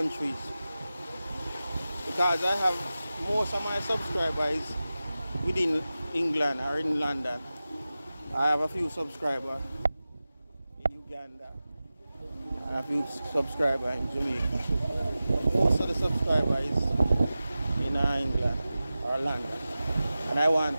because I have most of my subscribers within England or in London. I have a few subscribers in Uganda and a few subscribers in Jamaica. Most of the subscribers in England or London, and I want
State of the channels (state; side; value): inverted; both; correlation -0.95